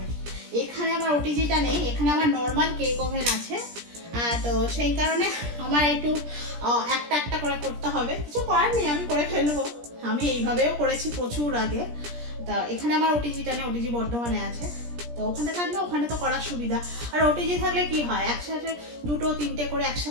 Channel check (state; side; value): late; left; 17 ms